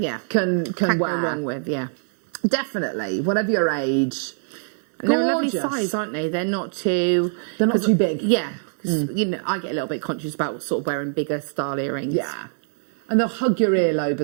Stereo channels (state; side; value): silent; left; digital silence